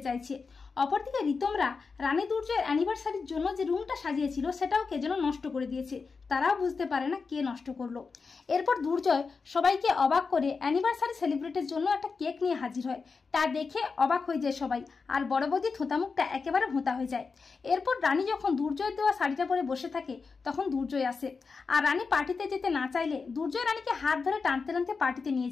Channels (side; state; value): right; quieter; 4.8 dB